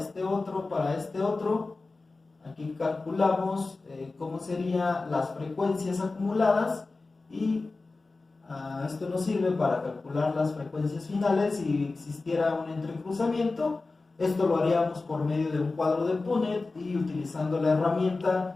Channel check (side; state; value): right; quieter; 3.6 dB